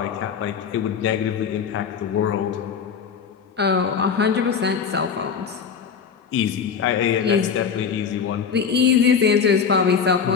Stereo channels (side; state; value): right; quieter; 6.6 dB